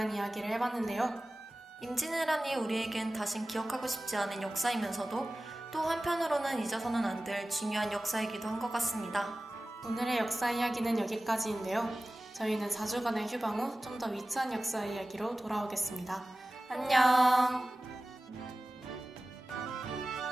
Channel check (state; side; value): normal; both; correlation 0.97